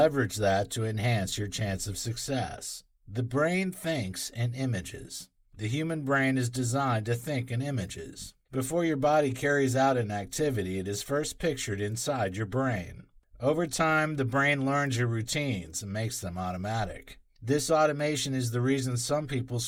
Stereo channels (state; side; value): identical; both; correlation 1.00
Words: that to enhance your chance of success. The brain thinks in images. The human brain is designed to think in images. Before your body carries out an activity, it is first pictured inside your brain. Over time, the brain learns your routines and makes them automatic. This automation is the reason some people